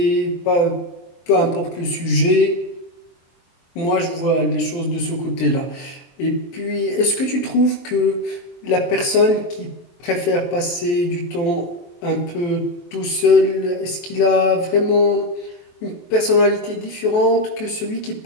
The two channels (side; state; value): right; late; 23 ms